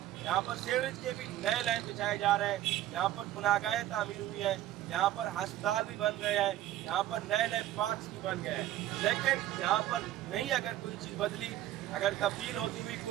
यहाँ पर सीवरेज के भी नए लाइन बिछाए जा रहे हैं। यहाँ पर पुनागाहें तामीर हुई हैं, यहाँ पर अस्पताल भी बन गए हैं, यहाँ पर नए नए पार्क्स भी बन गए हैं। लेकिन यहाँ पर नहीं अगर कोई चीज़ बदली, अगर तब्दील होती हुई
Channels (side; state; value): left; quieter; 13.6 dB